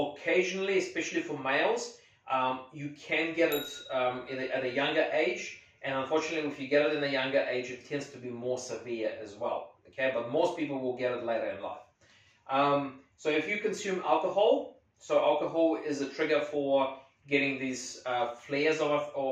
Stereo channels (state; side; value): identical; both; correlation 1.00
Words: especially for males, you can get it at a younger age. And unfortunately, if you get it in a younger age, it tends to be more severe as well. Okay, but most people will get it later in life. So if you consume alcohol, so alcohol is a trigger for getting these flares